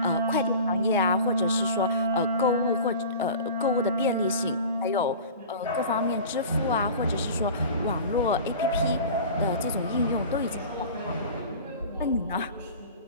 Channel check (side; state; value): both; inverted; correlation -0.38